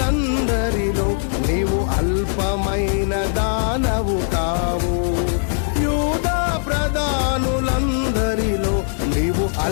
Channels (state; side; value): silent; right; 55 dB below the other